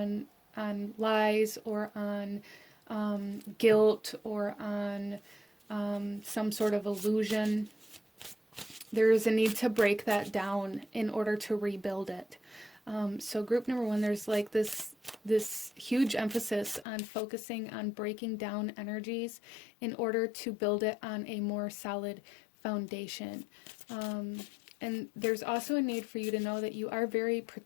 lies, or on guilt, or on some sort of illusion, there is a need to break that down in order to rebuild it. So group number 1, there's like this huge emphasis on focusing on breaking down energies in order to build it on a more solid foundation. And there's also a need for you to know that you are very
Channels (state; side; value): drops out; right; at 16.9 s